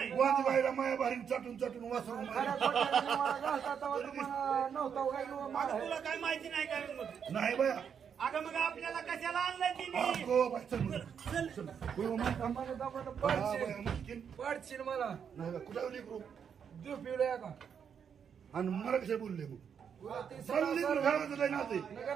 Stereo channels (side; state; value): left; quieter; 7.5 dB